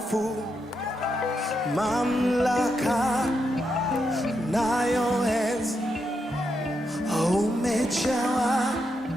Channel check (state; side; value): normal; both; correlation 0.83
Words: mamlaka nayo enzi. Umejawa